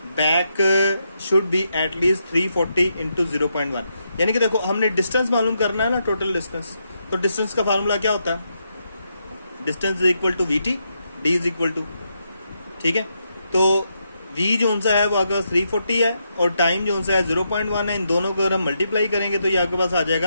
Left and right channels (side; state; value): both; inverted; correlation -0.81